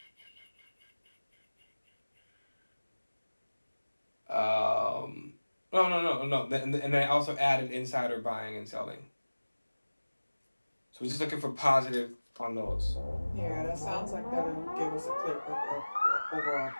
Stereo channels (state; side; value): inverted; both; correlation -1.00